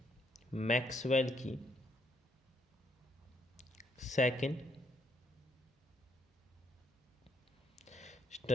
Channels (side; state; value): both; normal; correlation 0.72